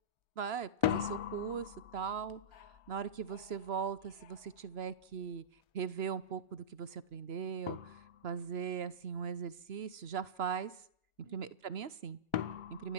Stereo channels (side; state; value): left; late; 2.9 ms